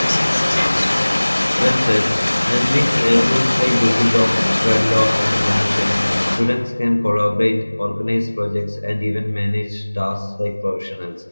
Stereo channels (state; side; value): inverted; both; correlation -1.00